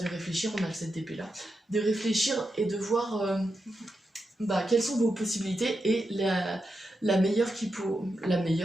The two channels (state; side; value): normal; both; correlation 0.87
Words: réfléchir, on a le 7 d'épée là, de réfléchir et de voir quelles sont vos possibilités et la meilleure la